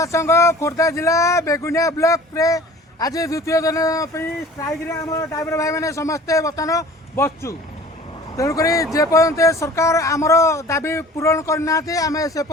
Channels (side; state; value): both; normal; correlation 0.45